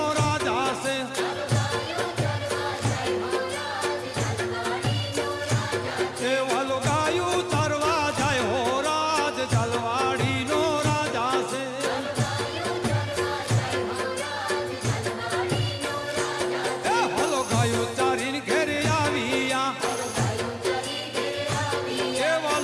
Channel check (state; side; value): identical; both; correlation 1.00